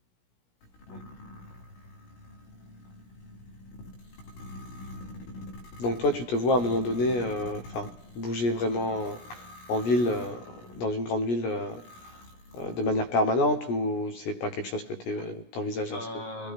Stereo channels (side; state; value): right; late; 17 ms